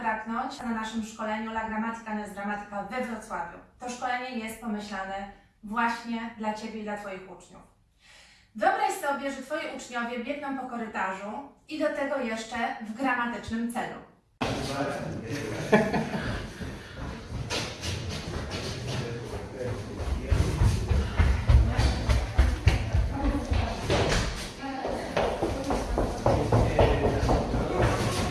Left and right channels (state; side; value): identical; both; correlation 1.00